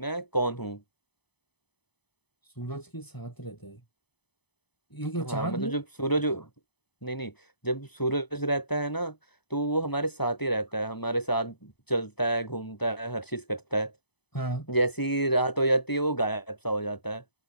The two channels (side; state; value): right; late; 0.98 ms